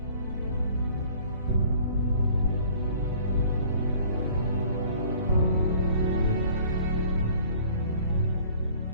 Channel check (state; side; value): inverted; both; correlation -0.53